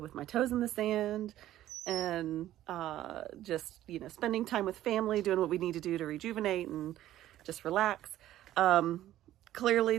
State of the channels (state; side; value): quieter; left; 13.5 dB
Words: with my toes in the sand and just, spending time with family, doing what we need to do to rejuvenate and just relax.